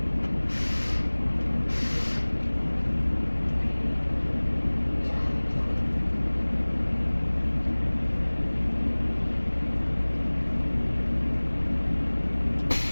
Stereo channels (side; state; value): both; inverted; correlation -1.00